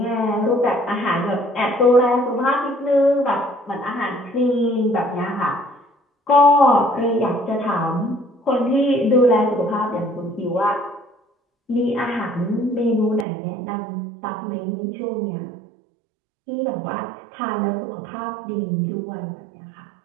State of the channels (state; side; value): drops out; left; at 13.2 s